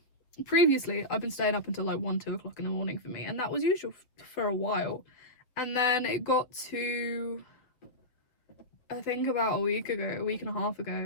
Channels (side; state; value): right; late; 7.9 ms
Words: previously I've been staying up until like 1-2 o'clock in the morning for me, and that was usual for a while. And then it got to, I think about a week and a half